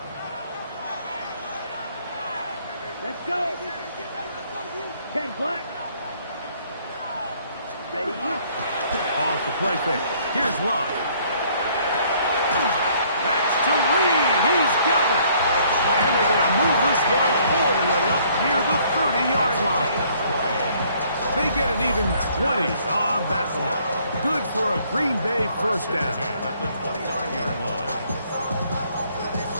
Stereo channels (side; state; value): both; inverted; correlation -0.62